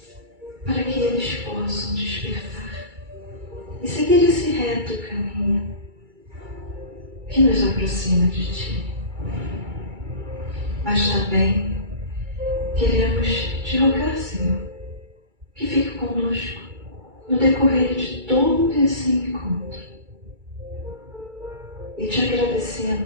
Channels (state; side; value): late; left; 2.3 ms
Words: para que eles possam despertar e seguir esse reto caminho que nos aproxima de Ti. Mas também queremos Te rogar, Senhor, que fique conosco no decorrer de todo esse encontro. E Te